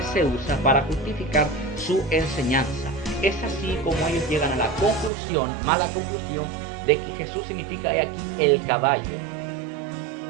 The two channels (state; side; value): drops out; left; at 5.1 s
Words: se usa para justificar su enseñanza. Es así como ellos llegan a la conclusión, mala conclusión, de que Jesús significa he aquí el caballo.